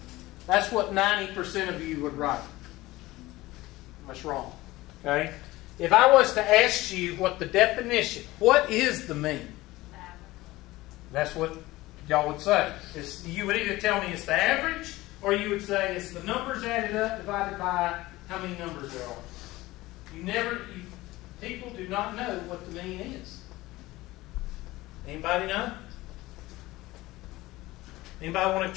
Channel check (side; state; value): right; quieter; 18.6 dB